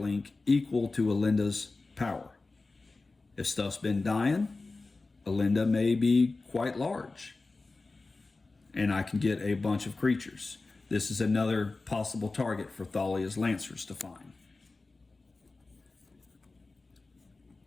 equal to Alinda's power. If stuff's been dying, Alinda may be quite large, and I can get a bunch of creatures. This is another possible target for Thalia's Lancers to find.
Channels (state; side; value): quieter; right; 3.6 dB